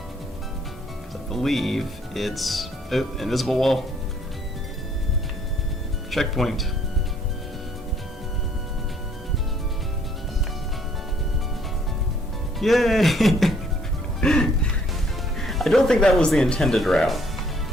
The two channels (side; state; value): both; normal; correlation 0.63